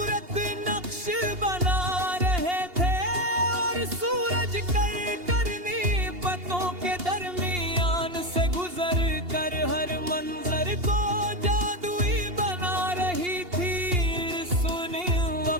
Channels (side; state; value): left; late; 2.8 ms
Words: नक्श बना रहे थे, और सूरज करनी पत्तों के दरमियान से गुजर कर हर मंजर को जादुई बना रही थी। सुनी